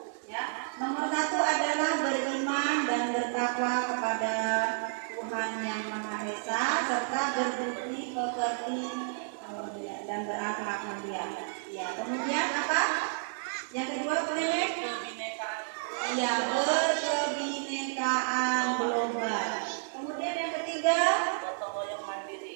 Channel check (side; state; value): left; silent; digital silence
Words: Ya, nomor 1 adalah beriman dan bertakwa kepada Tuhan yang Maha Esa serta berbudi pekerti dan berakhlak mulia. Ya, kemudian apa? Yang kedua boleh? Iya, berkebinekaan global. Kemudian yang ketiga,